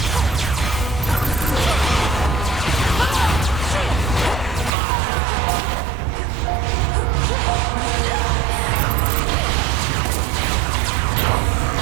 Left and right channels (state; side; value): drops out; left; at 4.7 s